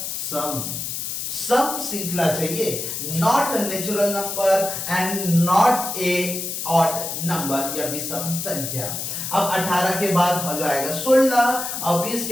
सम श्रृंखला चाहिए, not natural number and not a odd number या विषम संख्या। अब 18 के बाद हो जाएगा 16 और 20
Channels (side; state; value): left; noise; hiss, 4 dB below the sound